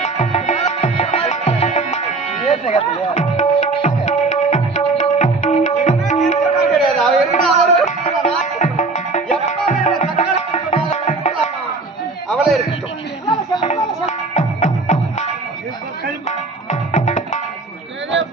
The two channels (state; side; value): quieter; left; 3.7 dB